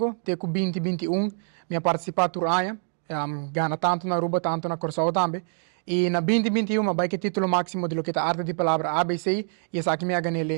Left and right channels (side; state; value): left; silent; digital silence